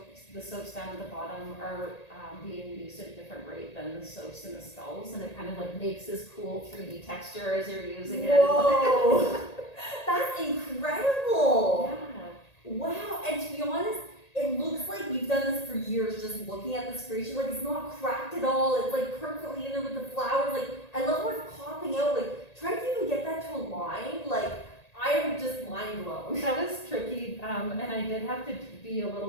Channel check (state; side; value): late; right; 1.8 ms